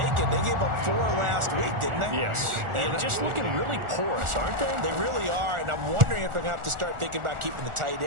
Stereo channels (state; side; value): late; left; 1.4 ms